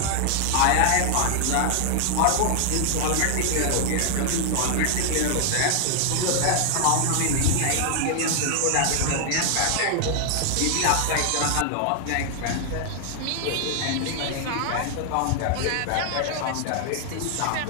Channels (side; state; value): both; different; correlation 0.00